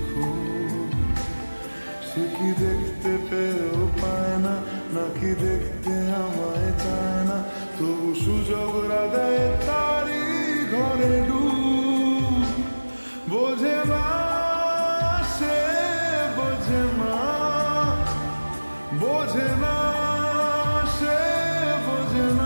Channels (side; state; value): both; inverted; correlation -1.00